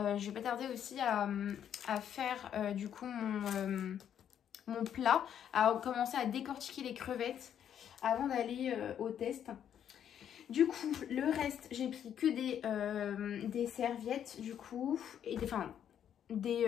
vais pas tarder aussi à faire du coup mon plat, à commencer à décortiquer les crevettes avant d'aller au test. Du coup, le reste, j'ai pris que des serviettes du coup, et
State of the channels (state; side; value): quieter; right; 9.4 dB